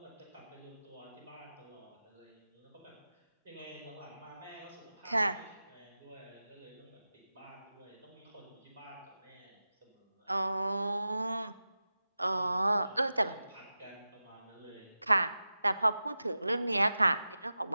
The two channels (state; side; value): inverted; both; correlation -0.94